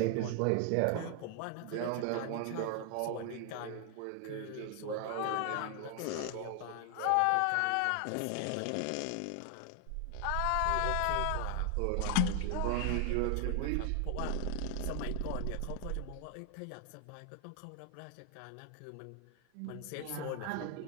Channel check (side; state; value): both; different; correlation 0.00